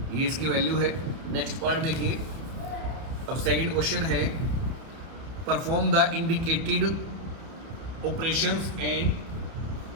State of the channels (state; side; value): late; left; 31 ms